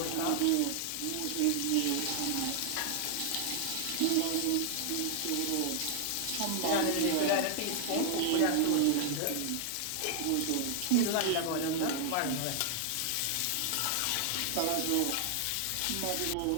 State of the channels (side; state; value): both; different; correlation 0.00